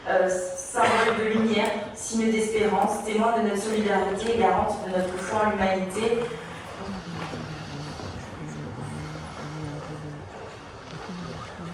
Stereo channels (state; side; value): identical; both; correlation 1.00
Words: symbole de lumière, signe d'espérance, témoin de notre solidarité et garante de notre foi en l'humanité.